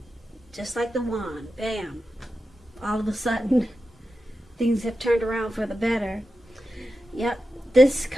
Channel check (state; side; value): normal; both; correlation 0.91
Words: Just like the wand, bam, all of a sudden, things have turned around for the better. Yep, this